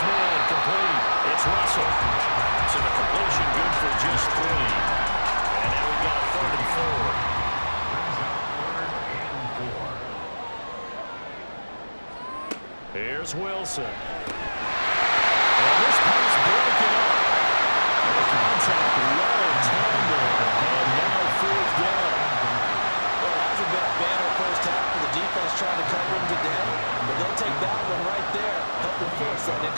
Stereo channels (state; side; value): inverted; both; correlation -1.00